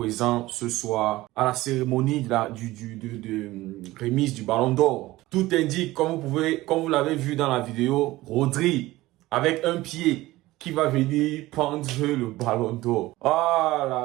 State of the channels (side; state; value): left; quieter; 18.0 dB